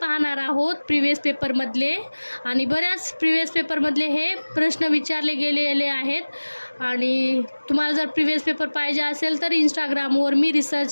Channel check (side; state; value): both; inverted; correlation -1.00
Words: आहोत प्रिव्हियस पेपरमधले, आणि बऱ्याच प्रिव्हियस पेपरमधले हे प्रश्न विचारले गेलेले आहेत। आणि तुम्हाला जर प्रिव्हियस पेपर पाहिजे असेल तर इंस्टाग्रामवर मी